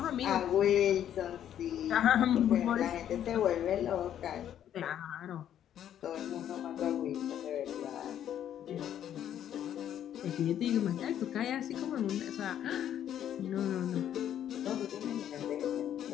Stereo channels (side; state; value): right; quieter; 10.4 dB